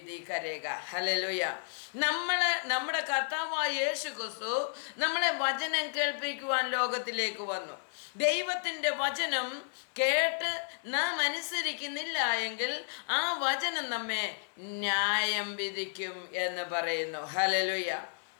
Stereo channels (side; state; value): right; silent; digital silence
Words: करेगा। ഹല്ലേലൂയ। നമ്മുടെ കർത്താവായ യേശു ക്രിസ്തു നമ്മളെ വചനം കേൾപ്പിക്കുവാൻ ലോകത്തിലേക്ക് വന്നു. ദൈവത്തിൻ്റെ വചനം കേട്ട് നാം അനുസരിക്കുന്നില്ല എങ്കിൽ ആ വചനം നമ്മെ ന്യായം വിധിക്കും എന്ന് പറയുന്നു. ഹല്ലേലൂയ.